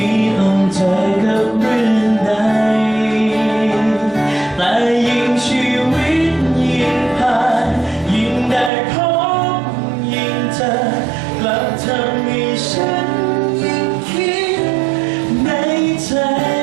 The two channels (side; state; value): left; drops out; at 8.7 s